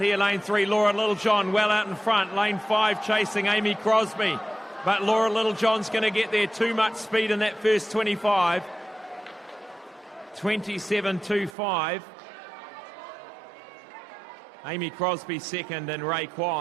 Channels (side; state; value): left; drops out; at 11.6 s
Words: here, lane 3, Laura Littlejohn well out in front, lane 5 chasing Amy Crosby, but Laura Littlejohn's going to get there, too much speed in that first 25, 27.25. Amy Crosby second, and Ray